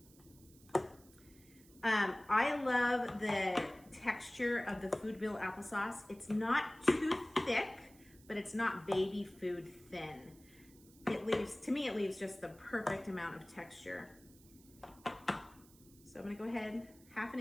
I love the texture of the Food Bill applesauce. It's not too thick, but it's not baby food thin. To me, it leaves just the perfect amount of texture. So I'm gonna go ahead, 1/2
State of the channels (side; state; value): right; noise; hiss, 25 dB below the sound